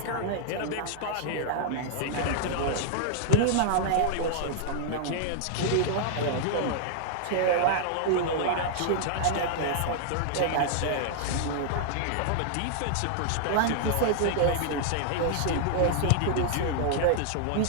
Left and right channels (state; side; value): different; both; correlation -0.01